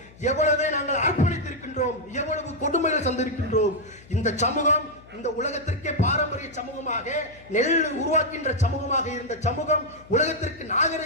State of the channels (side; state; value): left; noise; hum, 23 dB below the sound